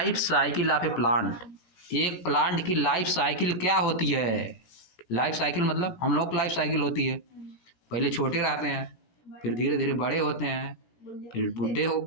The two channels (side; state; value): right; late; 17 ms